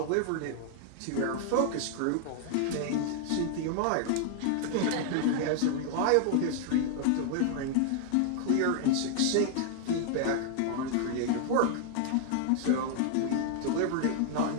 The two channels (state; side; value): different; both; correlation 0.00